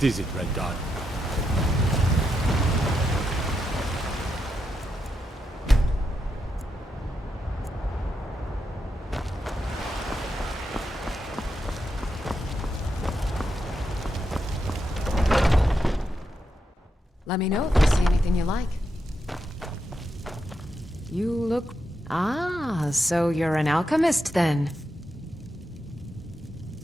is it, Red Dot? Let me know if you see anything you like. You look... Ah, so you're an alchemist then.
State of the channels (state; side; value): normal; both; correlation 0.84